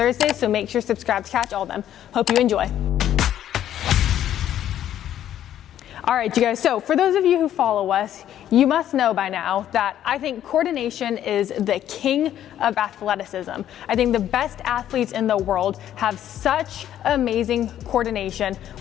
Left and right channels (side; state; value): right; quieter; 11.2 dB